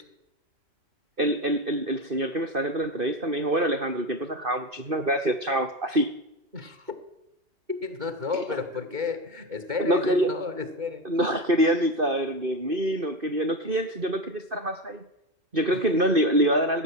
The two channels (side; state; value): left; late; 2.5 ms